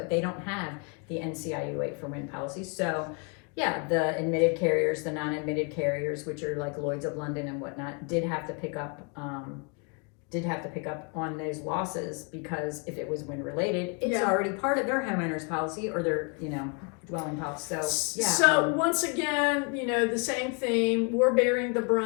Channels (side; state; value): right; quieter; 35.8 dB